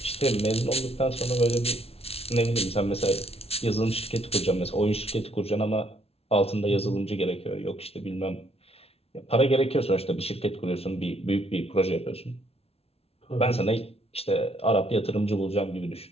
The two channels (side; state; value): right; late; 0.29 ms